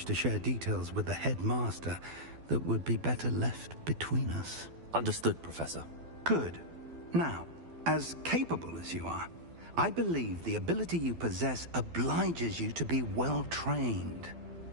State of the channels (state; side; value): late; left; 12 ms